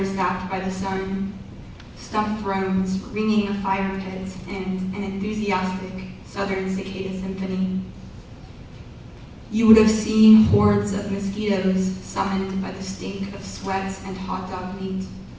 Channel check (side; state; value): both; identical; correlation 1.00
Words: zapped by the sun, stumped thrones ringing a fire pit, and an enthusiastic southern cicada symphony. You would have seen hordes of mosquitoes summoned by the stink of sweat and hot dog meat,